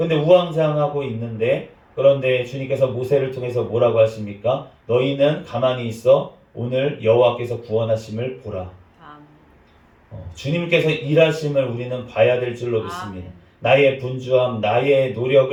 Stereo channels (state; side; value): identical; both; correlation 1.00